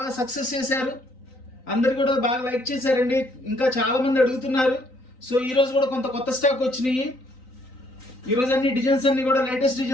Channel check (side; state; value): right; late; 3.9 ms